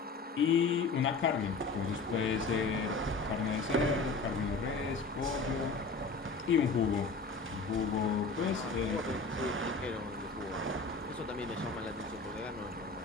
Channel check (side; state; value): right; quieter; 4.0 dB